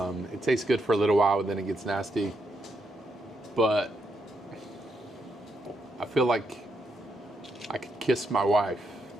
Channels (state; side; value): normal; both; correlation 0.80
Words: It tastes good for a little while, and then it gets nasty. But I feel like I could kiss my wife,